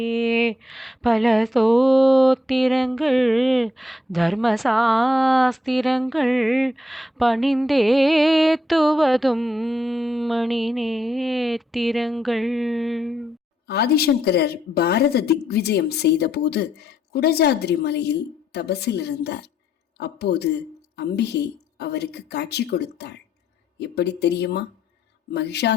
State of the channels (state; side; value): normal; both; correlation 0.77